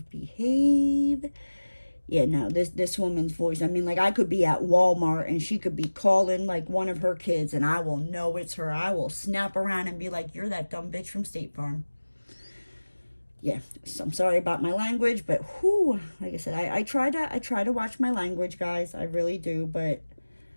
Yeah, no, this woman's voice, I mean, like, I could be at Walmart and she could be calling, like, one of her kids, and I will know it's her. I will snap around and be like, you're that dumb bitch from State Farm. Yeah, so I'm sorry about my language, but whoo, like I said, I try to watch my language, guys. I really do, but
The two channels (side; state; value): both; inverted; correlation -1.00